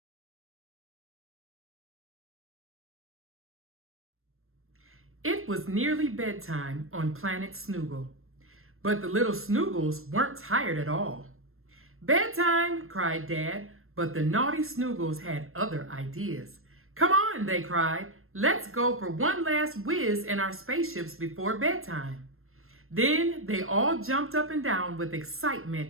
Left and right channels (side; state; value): left; late; 0.62 ms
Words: It was nearly bedtime on planet Snoogle, but the little Snoogles weren't tired at all. "Bedtime!" cried Dad, but the naughty Snoogles had other ideas. "Come on," they cried. "Let's go for one last whiz in our spaceships before bedtime." Then they all jumped up and down with